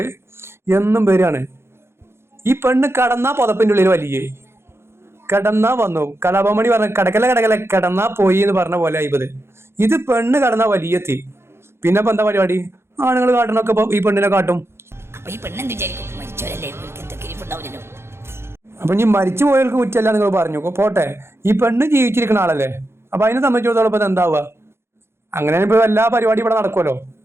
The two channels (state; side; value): late; left; 0.12 ms